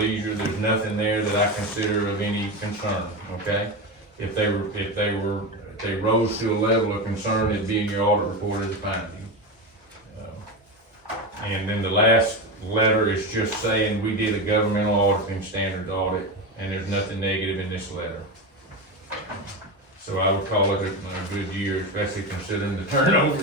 there's nothing there that I consider of any concern, okay? If they rose to a level of concern, it'd be in your audit report as a finding. And then the last letter is just saying we did a governmental auditing standards audit, and there's nothing negative in this letter. So I would call it a good year, especially considering the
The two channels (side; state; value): both; normal; correlation 0.18